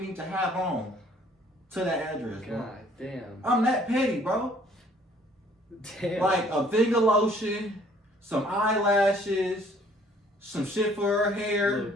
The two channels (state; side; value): normal; both; correlation 0.59